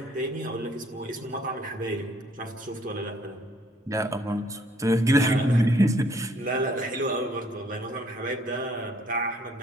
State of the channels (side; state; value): both; normal; correlation 0.62